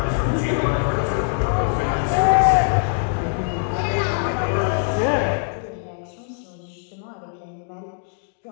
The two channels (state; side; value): silent; right; digital silence